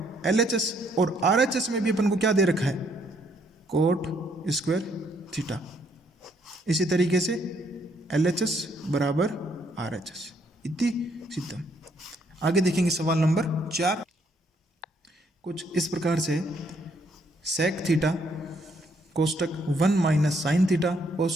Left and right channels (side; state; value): both; normal; correlation 0.70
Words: LHS, और RHS में भी अपन को क्या दे रखा है, कोट स्क्वायर थीटा। इसी तरीके से LHS बराबर RHS इति सिद्धम। आगे देखेंगे सवाल नंबर 4। कुछ इस प्रकार से सेक थीटा कोष्टक 1 माइनस साइन थीटा